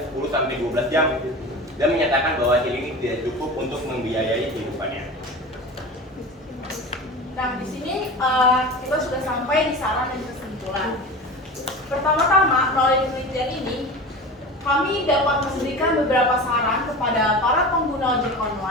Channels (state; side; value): normal; both; correlation 0.32